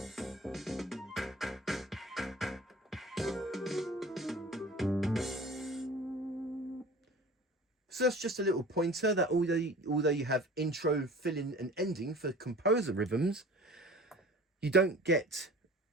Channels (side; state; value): both; normal; correlation 0.43